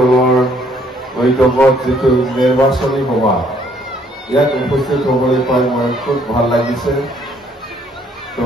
বৈঠকত যিটো নিৰ্বাচনী সভা ইয়াত উপস্থিত হ'বলৈ পাই মই খুব ভাল লাগিছে। তো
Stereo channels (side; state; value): both; normal; correlation 0.65